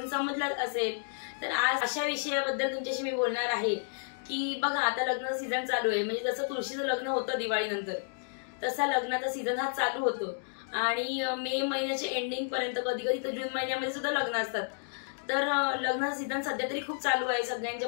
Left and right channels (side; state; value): right; silent; digital silence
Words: समजलाच असेल। तर आज अशा विषयाबद्दल तुमच्याशी मी बोलणार आहे की बघा, आता लग्नाचा सीझन चालू आहे। म्हणजे जसं तुळशीचं लग्न होतं दिवाळीनंतर, तसा लग्नाचा सीझन हा चालू होतो आणि मे महिन्याच्या एंडिंग पर्यंत, कधी कधी तर जून महिन्यामध्ये सुद्धा लग्न असतात। तर लग्नाचा सीझन सध्या तरी खूप चालू आहे। सगळ्यांच्या